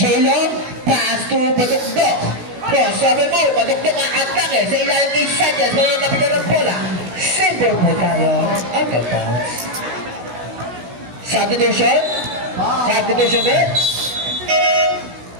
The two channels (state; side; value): late; left; 16 ms